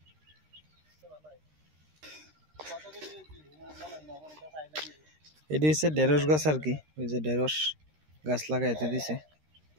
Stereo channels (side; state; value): left; late; 13 ms